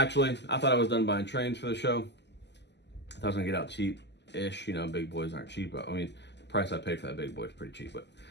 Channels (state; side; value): late; right; 0.50 ms